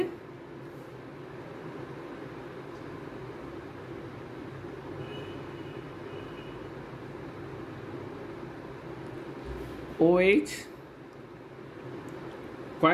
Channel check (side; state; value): both; identical; correlation 1.00